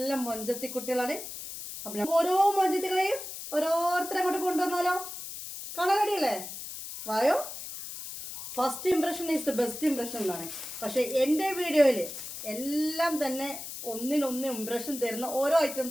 മൊഞ്ചത്തി കുട്ടികളാണ്. അപ്പം ഓരോ മൊഞ്ചത്തികളെയും ഓരോരുത്തരെ അങ്ങോട്ട് കൊണ്ടുവന്നാലോ? കാണാൻ റെഡിയല്ലേ? വായോ. First impression is the best impression എന്നാണ്. പക്ഷെ എൻ്റെ വീഡിയോയിൽ എല്ലാം തന്നെ ഒന്നിനൊന്ന് ഇംപ്രഷൻ തരുന്ന ഓരോ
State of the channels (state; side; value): noise; left; hiss, 9 dB below the sound